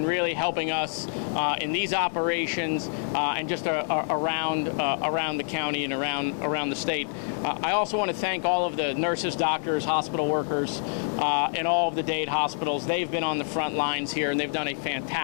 really helping us in these operations and just around the county and around the state. I also want to thank all of the nurses, doctors, hospital workers, and all of the Dade hospitals. They've been on the front lines here, and they've done a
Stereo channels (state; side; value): silent; right; digital silence